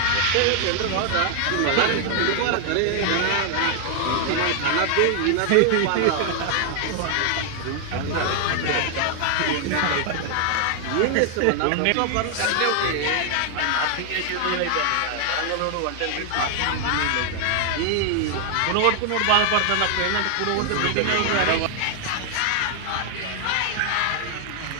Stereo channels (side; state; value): both; different; correlation 0.00